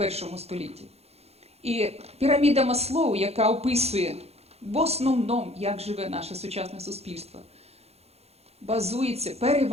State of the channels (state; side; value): late; left; 0.30 ms